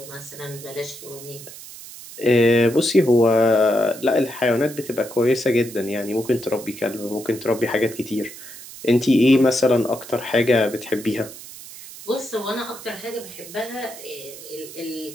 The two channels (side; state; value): right; noise; hiss, 15 dB below the sound